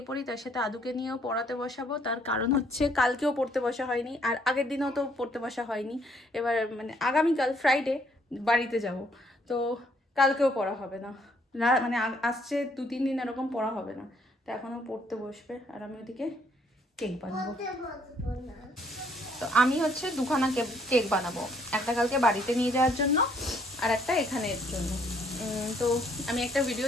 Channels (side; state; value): both; normal; correlation 0.66